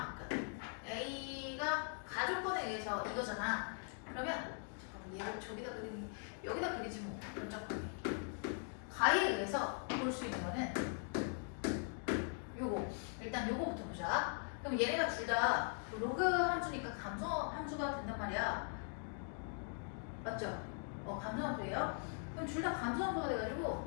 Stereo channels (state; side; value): silent; right; 50 dB below the other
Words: A가 가족권에 의해서 이거잖아. 그러면 얘를 저기다 그리니 여기다 그리지 뭐. 깜짝하네. 가에 의해서 볼 수 있는 거는 요거. 일단 요거부터 보자. 그럼 얘네가 둘 다 로그 함수니까 감소 함수가 된단 말이야. 맞죠? 감소 함수예요. 그럼 둘 다 감소 함수가